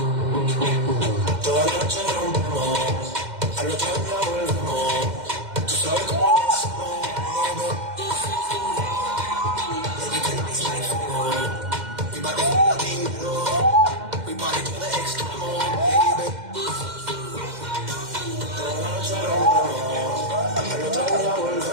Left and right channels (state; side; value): late; left; 2.1 ms